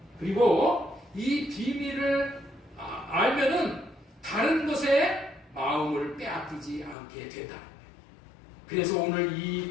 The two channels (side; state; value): right; drops out; at 7.0 s